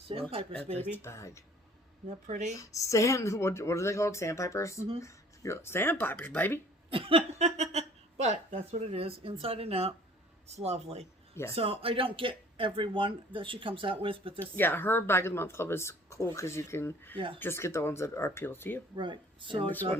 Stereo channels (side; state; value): both; normal; correlation 0.52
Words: baby. Bag. Isn't that pretty? What are they called? Sandpipers? Mm-hmm. Sandpipers, baby. But that's what it is, inside and out. It's lovely. Yes. So I don't get every one that she comes out with, but this... Yeah, her Bag of the Month Club is cool because you can just get the ones that are appeal to you. Right. So I